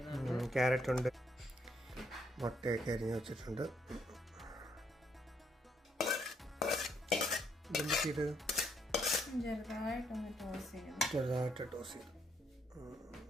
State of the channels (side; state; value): both; normal; correlation 0.73